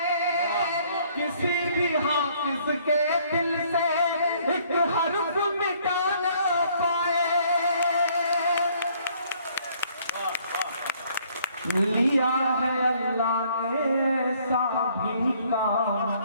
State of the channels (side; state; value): both; inverted; correlation -0.62